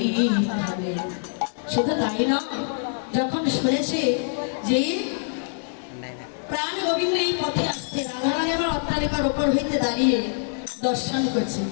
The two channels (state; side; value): silent; right; 59 dB below the other